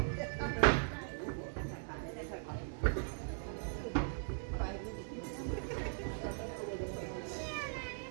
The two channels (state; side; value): silent; left; digital silence